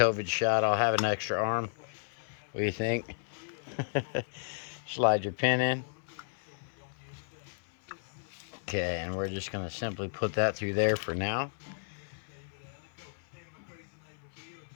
shot, I'll have an extra arm. What do you think? Slide your pin in. Okay, and we're just going to simply put that through there for now.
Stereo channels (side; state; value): right; silent; 56 dB below the other